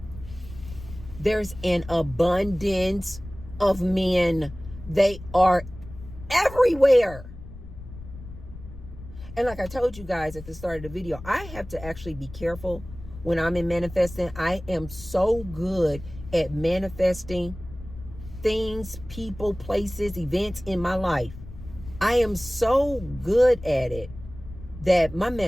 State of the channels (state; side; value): noise; left; rumble, 15 dB below the sound